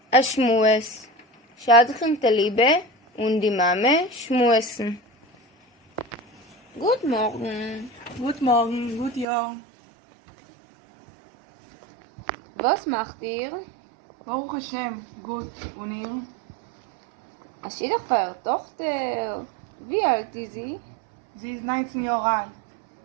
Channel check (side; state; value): left; drops out; at 9.2 s